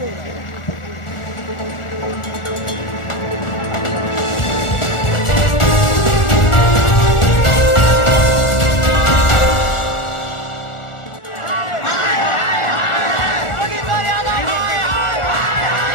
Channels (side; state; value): right; late; 1.4 ms